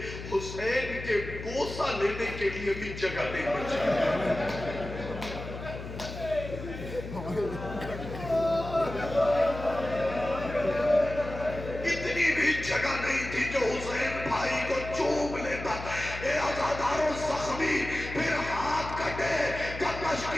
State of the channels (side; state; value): left; noise; hum, 9 dB below the sound